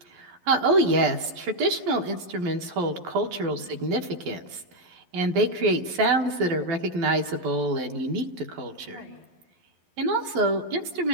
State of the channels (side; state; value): left; late; 11 ms